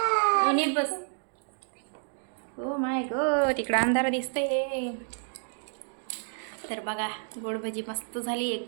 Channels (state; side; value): silent; left; digital silence